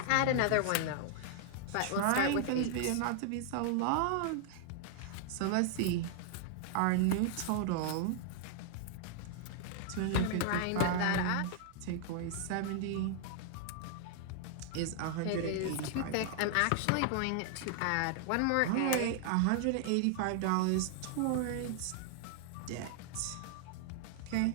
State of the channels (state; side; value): different; both; correlation 0.00